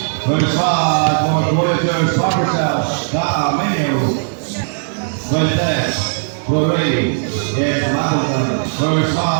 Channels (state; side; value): silent; left; digital silence